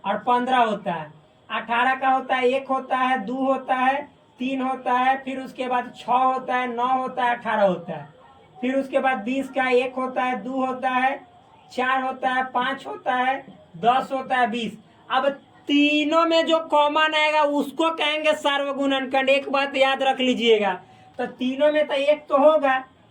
और 15 होता है। 18 का होता है 1 होता है, 2 होता है, 3 होता है, फिर उसके बाद 6 होता है, 9 होता है, 18 होता है, फिर उसके बाद 20 का 1 होता है, 2 होता है, 4 होता है, 5 होता है, 10 होता है, 20। अब तीनों में जो कॉमन आएगा उसको कहेंगे सार्वगुणनखंड। एक बात याद रख लीजिएगा, तो तीनों में तो 1 तो होगा,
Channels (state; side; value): identical; both; correlation 1.00